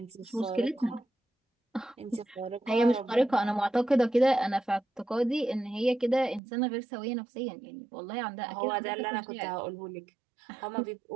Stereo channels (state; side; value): drops out; left; at 6.4 s